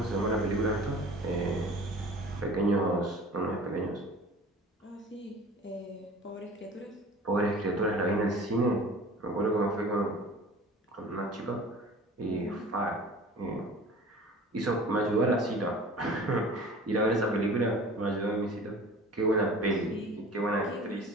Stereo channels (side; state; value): both; normal; correlation 0.42